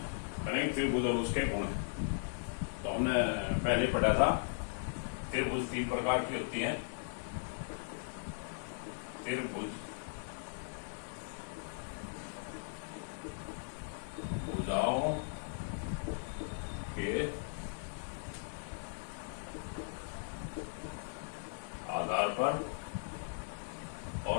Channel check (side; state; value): right; silent; digital silence